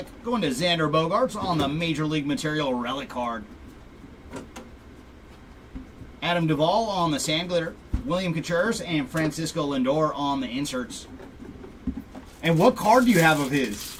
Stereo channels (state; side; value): identical; both; correlation 1.00